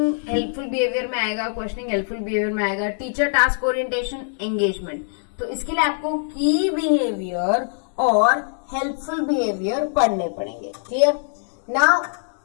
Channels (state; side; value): silent; right; digital silence